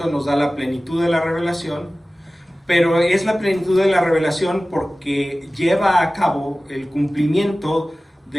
nos da la plenitud de la revelación, pero es la plenitud de la revelación porque lleva a cabo el cumplimiento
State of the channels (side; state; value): both; normal; correlation 0.97